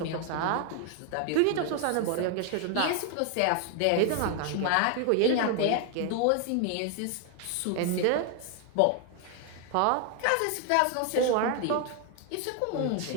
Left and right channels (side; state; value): both; different; correlation 0.01